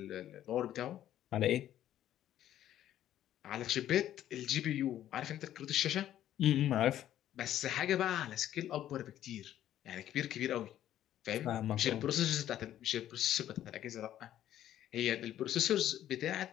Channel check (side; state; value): right; quieter; 12.0 dB